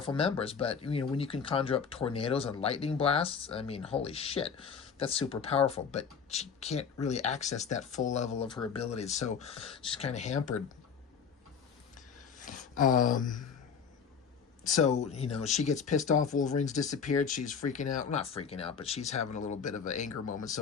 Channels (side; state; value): right; quieter; 6.5 dB